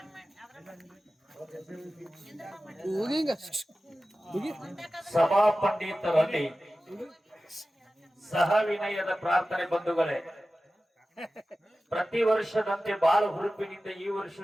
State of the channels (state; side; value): normal; both; correlation 0.95